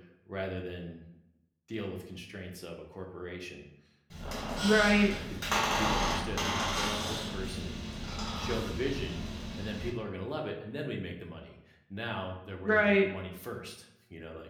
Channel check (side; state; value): both; identical; correlation 1.00